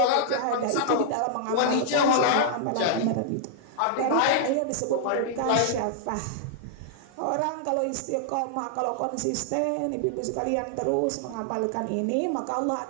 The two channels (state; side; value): different; both; correlation -0.01